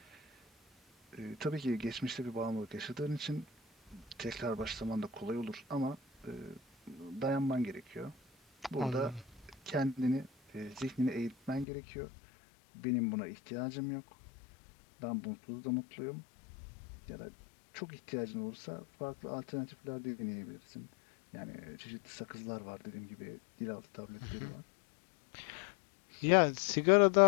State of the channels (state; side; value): drops out; right; at 11.7 s